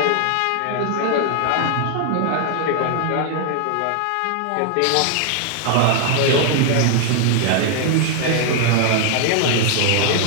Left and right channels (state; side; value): different; both; correlation 0.00